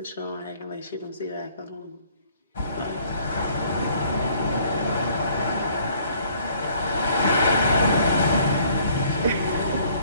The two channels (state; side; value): inverted; both; correlation -0.60